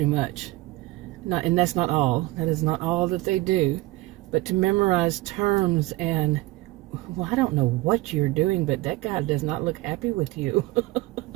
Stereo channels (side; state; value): left; quieter; 19.5 dB